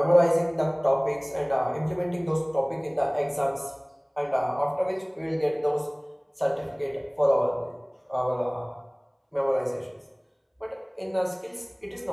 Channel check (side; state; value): both; identical; correlation 1.00